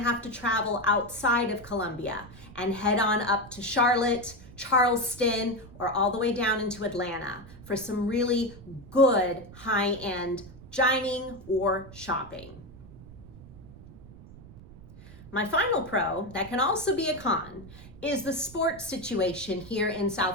to travel outside of Columbia and head on up to Charlotte, Charleston, or all the way down into Atlanta for some really good high-end dining or shopping. My final pro that can also be a con is the sports situation here in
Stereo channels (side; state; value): right; noise; rumble, 18 dB below the sound